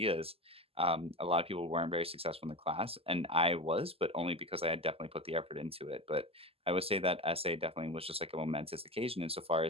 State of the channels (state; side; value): late; left; 0.28 ms